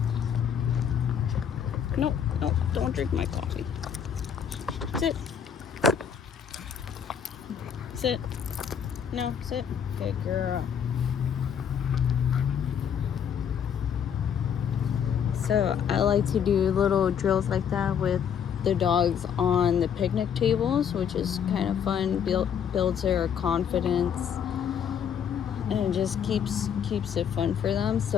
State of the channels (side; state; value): right; quieter; 8.0 dB